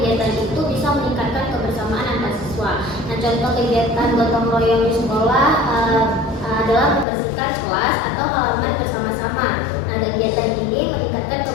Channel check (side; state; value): right; drops out; at 7.1 s